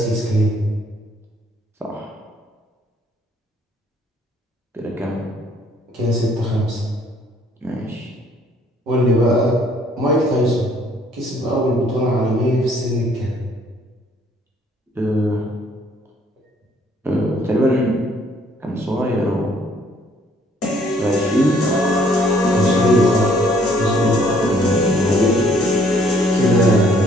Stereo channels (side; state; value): both; normal; correlation 0.63